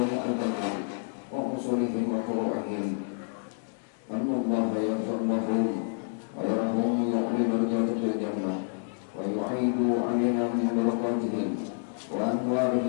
البندري وأصولهم وفروعهم أن الله يغفر لهم ويرهم يعلي درجات في الجنة ويعيد علينا من بركاتهم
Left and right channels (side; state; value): right; silent; digital silence